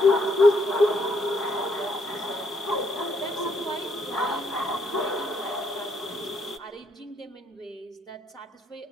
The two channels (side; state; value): both; normal; correlation 0.72